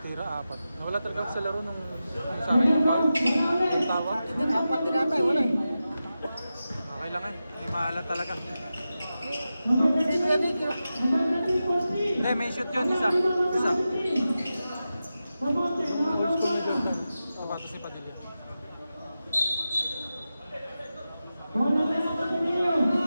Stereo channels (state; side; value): inverted; both; correlation -0.92